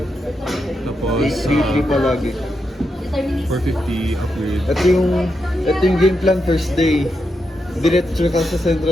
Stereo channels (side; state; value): both; normal; correlation 0.85